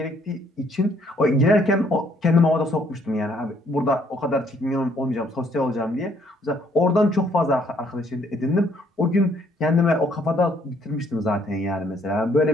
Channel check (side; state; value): both; normal; correlation 0.66